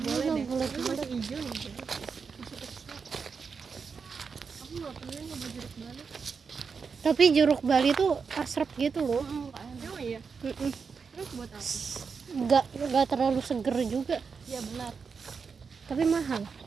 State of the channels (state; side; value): quieter; left; 5.5 dB